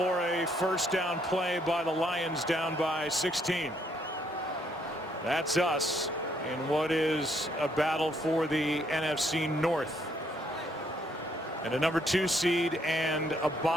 a first down play by the Lions, down by 16. That's us in what is a battle for the NFC North and a number 2 seed and a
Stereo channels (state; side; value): normal; both; correlation 0.70